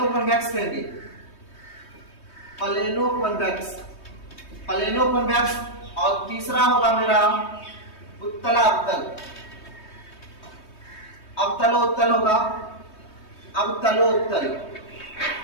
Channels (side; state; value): right; late; 3.2 ms